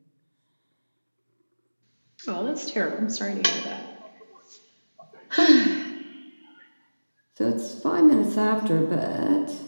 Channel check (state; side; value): inverted; both; correlation -1.00